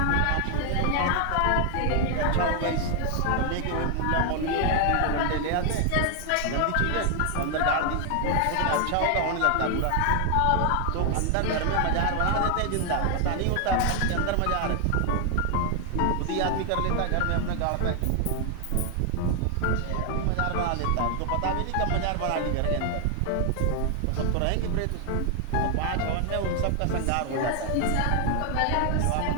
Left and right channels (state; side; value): different; both; correlation 0.00